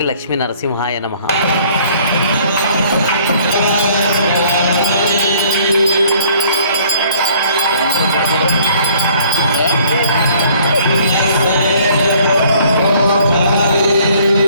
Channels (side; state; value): both; inverted; correlation -0.59